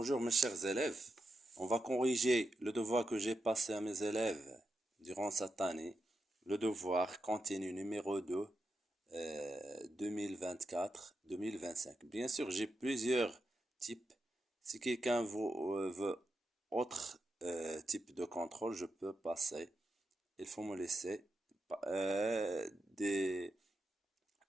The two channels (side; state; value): both; normal; correlation 0.87